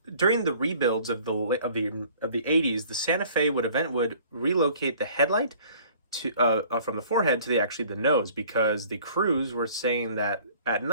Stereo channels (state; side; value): inverted; both; correlation -0.52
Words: during the rebuilds of the 80s, the Santa Fe would relocate the headlight to from the forehead to the nose, because the crews were saying that at